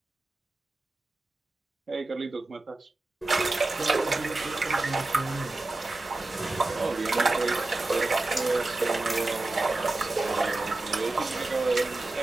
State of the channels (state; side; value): quieter; left; 3.0 dB